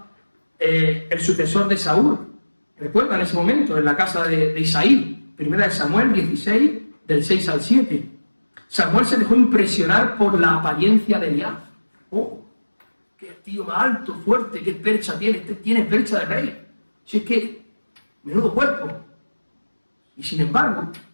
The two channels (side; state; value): both; inverted; correlation -1.00